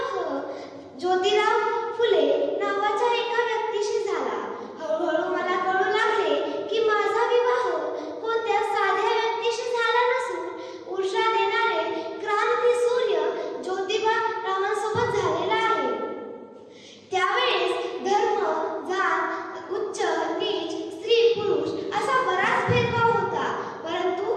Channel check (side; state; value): both; identical; correlation 1.00